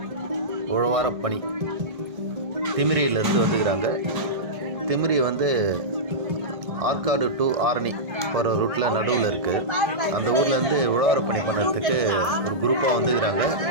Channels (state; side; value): late; left; 1.6 ms